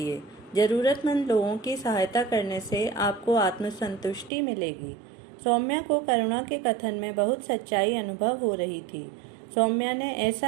जरूरतमंद लोगों की सहायता करने से आपको आत्मसंतुष्टि मिलेगी। सौम्या को करुणा के कथन में बहुत सच्चाई अनुभव हो रही थी। सौम्या ने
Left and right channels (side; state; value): left; drops out; at 4.3 s